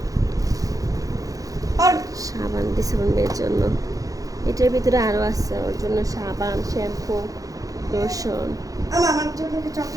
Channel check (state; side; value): late; left; 0.17 ms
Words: আর সাবান দিছে ওর মেয়ের জন্য। এটার ভিতরে আরও আছে ওর জন্য সাবান, শ্যাম্পু, লোশন। আমার জন্য কি